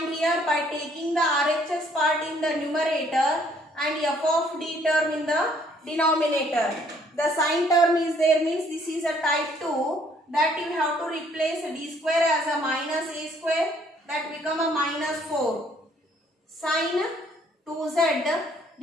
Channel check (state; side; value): normal; both; correlation 0.63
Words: here by taking the RHS part in the numerator and f of d term in the denominator. The sine term is there, means this is a type 2, that you have to replace d square as a minus a square, that become a minus 4. Sine 2z